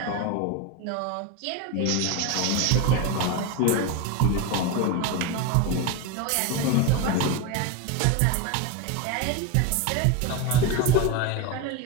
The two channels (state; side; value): different; both; correlation 0.04